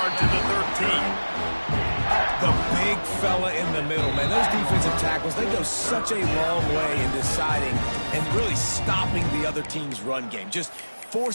to the 13. The big fella in the middle, man. Those defensive tackles, they go such a long way in deciding and really stopping the other team's run game. Just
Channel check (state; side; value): inverted; both; correlation -1.00